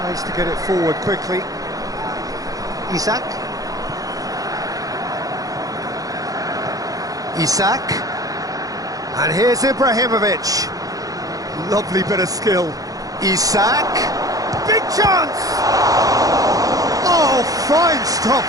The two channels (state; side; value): late; left; 0.17 ms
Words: to get it forward quickly. Isak. Isak. And here's Ibrahimovic. Lovely bit of skill. Isak. Big chance! Oh, fine stop